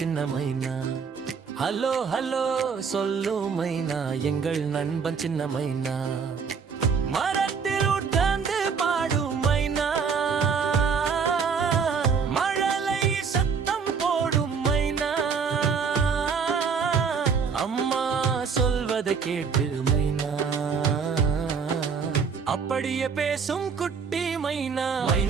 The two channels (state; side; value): quieter; left; 5.9 dB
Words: மைனா ஹலோ ஹலோ சொல்லும் மைனா எங்கள் நண்பன் சின்ன மைனா மரத்தில் உட்கார்ந்து பாடும் மைனா மழலை சத்தம் போடும் மைனா அம்மா சொல்வதை கேட்டு மைனா அப்படியே பேசும் குட்டி மைனா